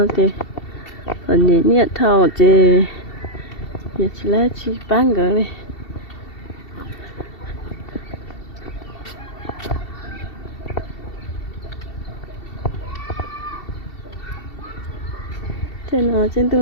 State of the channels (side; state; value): right; late; 2.7 ms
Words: thì phần nhẹ nhẹ thầu thì giờ chỉ là chỉ bán cái này. Trên tủ